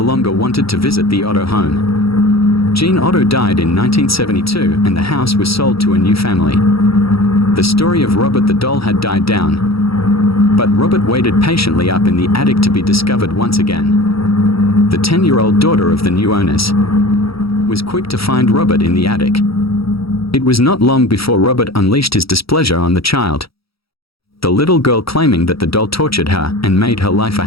longer wanted to visit the Otto home. Gene Otto died in 1972 and the house was sold to a new family. The story of Robert the doll had died down, but Robert waited patiently up in the attic to be discovered once again. The 10-year-old daughter of the new owners was quick to find Robert in the attic. It was not long before Robert unleashed his displeasure on the child, the little girl claiming that the doll tortured her and made her life a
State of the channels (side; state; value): right; late; 0.76 ms